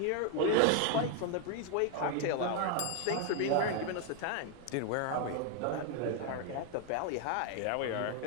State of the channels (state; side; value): different; both; correlation 0.01